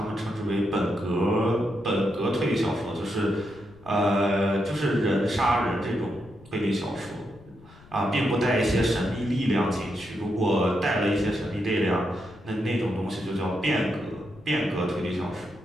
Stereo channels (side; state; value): left; noise; rumble, 23 dB below the sound